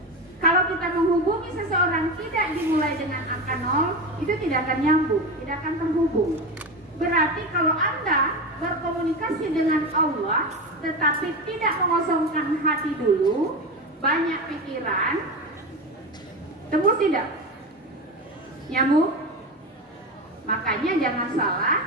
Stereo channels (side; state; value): both; normal; correlation 0.21